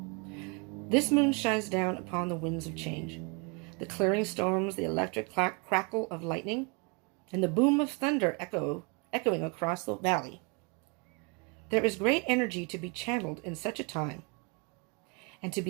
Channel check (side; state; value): left; quieter; 31.7 dB